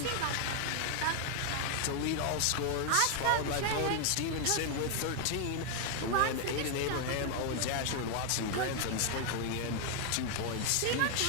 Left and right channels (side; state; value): both; different; correlation 0.00